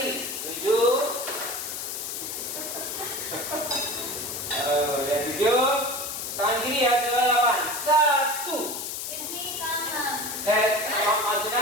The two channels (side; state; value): left; noise; hiss, 5 dB below the sound